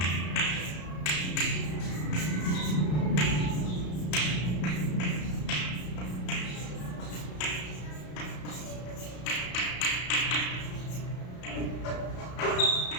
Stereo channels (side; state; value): right; late; 33 ms